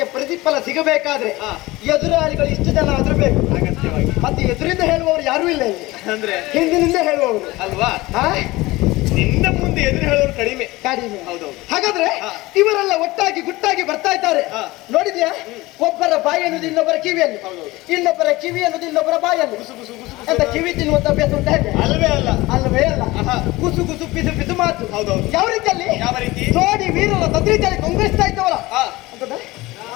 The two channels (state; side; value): quieter; right; 20.1 dB